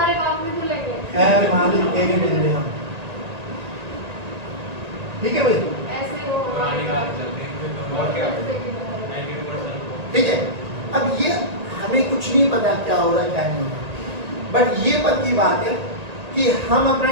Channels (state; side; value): late; left; 1.9 ms